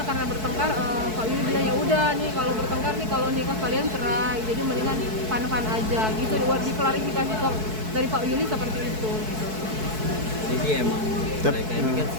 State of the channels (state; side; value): late; left; 4.6 ms